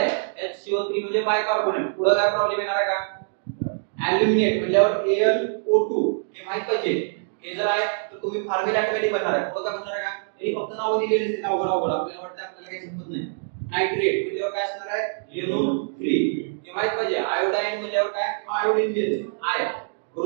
HCO3 म्हणजे बायकार्बोनेट, पुढे काय प्रॉब्लेम येणार आहे का? ॲल्युमिनेट म्हणल्यावर AlO2 हे माहित पाहिजे. हे जर आहे तर तुम्ही फॉर्म्युला ऑटोमॅटिक बनणार आहे. बघा बनणार आहे का? हे फक्त नाव दिलेले आहेत अवघड आपल्याला वाटतं आपल्याला काही समजत नाही. नाइट्रेट म्हणजे काय असणार आहे? NO3 हे माहित पाहिजे. आयोडाईन म्हणजे काय? आयोडीन देते आय.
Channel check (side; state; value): left; silent; digital silence